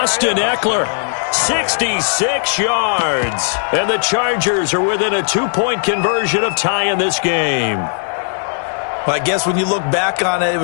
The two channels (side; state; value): right; silent; digital silence